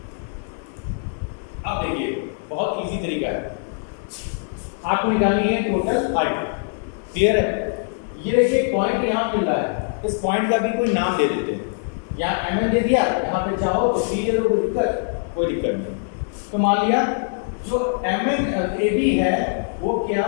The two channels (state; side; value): silent; right; digital silence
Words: अब देखिए बहुत इजी तरीका है, आपको निकालनी है टोटल हाइट। क्लियर है? ये देखिए पॉइंट यहाँ मिल रहा है, इस पॉइंट का भी कोई नाम दे देते हैं, यहाँ mn दे दिया, यहाँ पे चाहो तो c दे दो, कोई दिक्कत नहीं। तो मान लिया जो mn AB है वो क्या